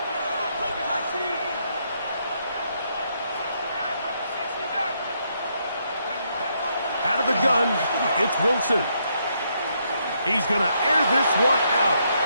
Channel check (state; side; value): inverted; both; correlation -0.75